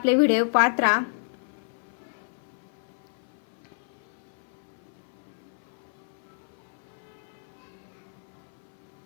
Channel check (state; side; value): silent; right; 58 dB below the other